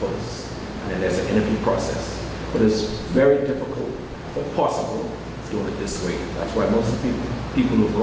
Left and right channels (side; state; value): both; identical; correlation 1.00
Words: posts, and then there's an interview process. But it's very difficult, but possible, doing it this way. That's why most of the people who've